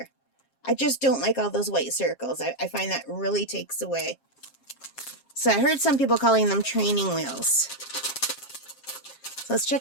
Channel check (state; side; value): late; right; 7.5 ms